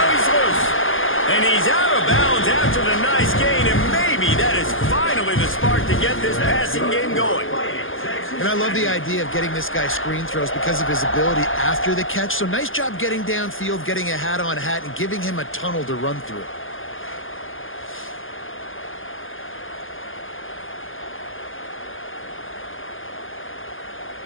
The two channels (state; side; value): late; right; 0.59 ms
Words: he's loose. And he's out of bounds after the nice gain, and maybe that is finally the spark to get this passing game going. And I love the idea of getting this guy screen throws because of his ability after the catch. So nice job getting downfield, getting a hat-on-hat, and giving him a tunnel to run through.